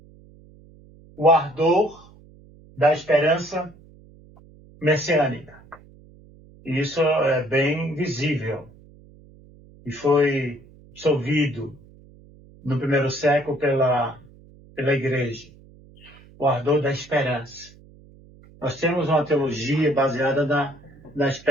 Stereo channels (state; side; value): noise; right; hum, 24 dB below the sound